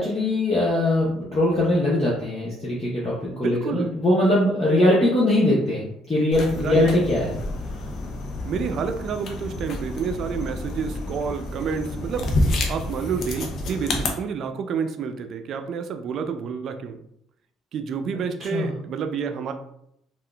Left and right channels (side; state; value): both; normal; correlation 0.68